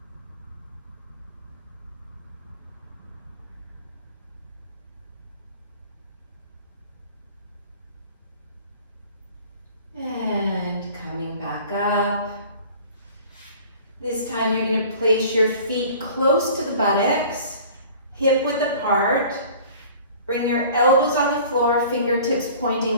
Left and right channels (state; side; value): inverted; both; correlation -0.46